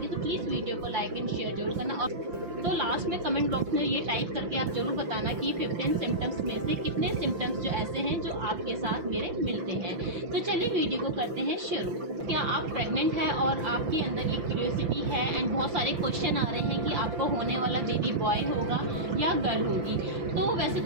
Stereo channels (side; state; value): left; late; 5.8 ms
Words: तो प्लीज़ वीडियो को लाइक एंड शेयर जरूर करना। और तो लास्ट में कमेंट बॉक्स में ये टाइप करके आप जरूर बताना कि 15 सिम्टम्स में से कितने सिम्टम्स जो ऐसे हैं जो आपके साथ मेरे मिलते हैं। तो चलिए वीडियो को करते हैं शुरू। क्या आप प्रेग्नेंट हैं और आपके अंदर ये क्यूरियोसिटी है एंड बहुत सारे क्वेश्चन आ रहे हैं कि आपको होने वाला बेबी बॉय होगा या गर्ल होगी? तो वैसे